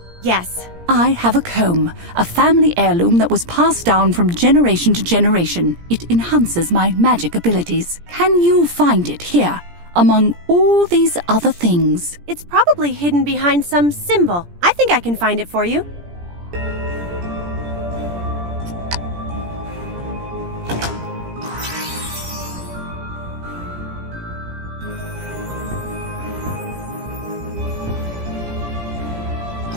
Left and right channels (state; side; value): late; left; 17 ms